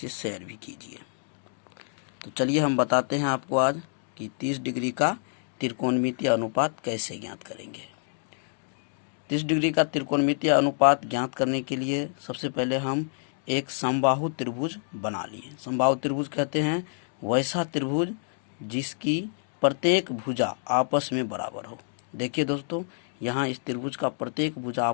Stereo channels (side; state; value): right; silent; digital silence